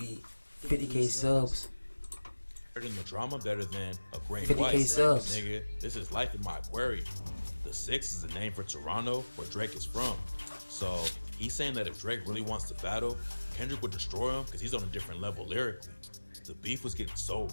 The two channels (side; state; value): both; inverted; correlation -1.00